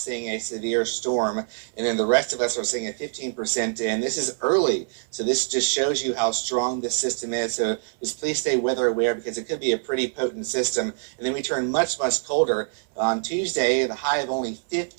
a severe storm, and then the rest of us are seeing a 15%, and this is early. So this just shows you how strong this system is. So just please stay weather aware because it could be a pretty potent system. And then we turn much, much colder. On Tuesday, the high of only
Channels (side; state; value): left; silent; 62 dB below the other